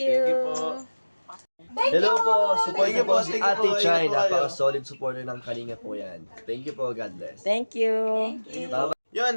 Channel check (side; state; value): both; inverted; correlation -1.00